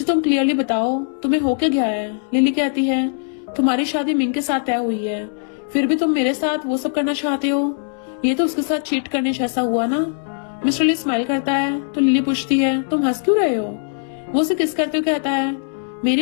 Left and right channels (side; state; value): right; silent; 66 dB below the other